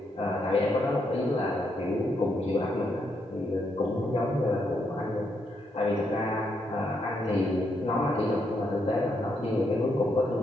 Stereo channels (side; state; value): both; normal; correlation 0.78